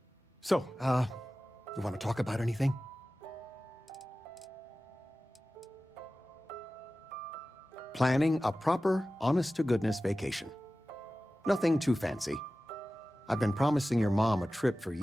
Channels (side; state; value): both; normal; correlation 0.96